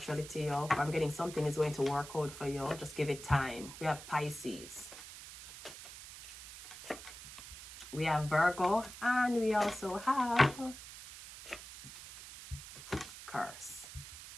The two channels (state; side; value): noise; right; hiss, 14 dB below the sound